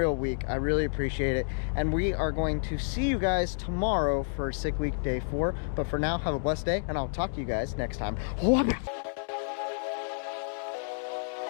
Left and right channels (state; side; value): silent; right; digital silence